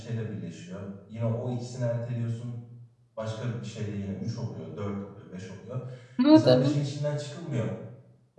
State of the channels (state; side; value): identical; both; correlation 1.00